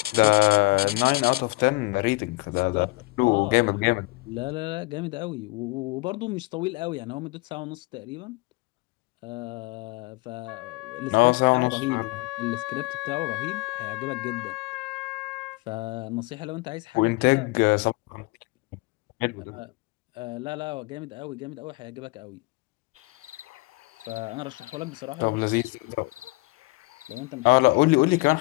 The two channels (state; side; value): quieter; right; 23.8 dB